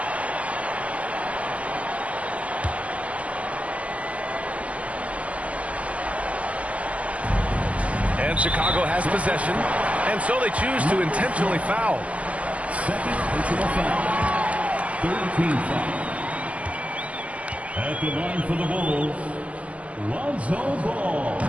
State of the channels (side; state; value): left; late; 0.065 ms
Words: And Chicago has possession. And so they choose to intentionally foul. Second personal foul. Third team foul. At the line for the Bulls, Lonzo Ball.